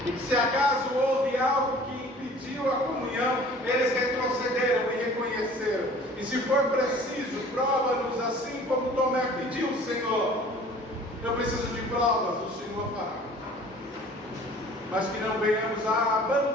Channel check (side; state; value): both; normal; correlation 0.48